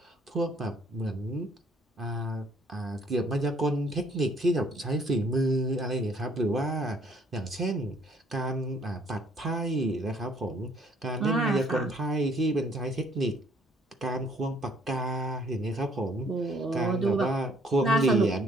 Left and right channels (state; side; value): normal; both; correlation 0.62